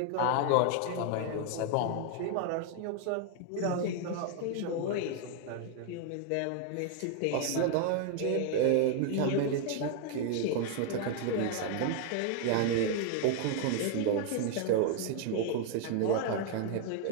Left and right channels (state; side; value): different; both; correlation 0.00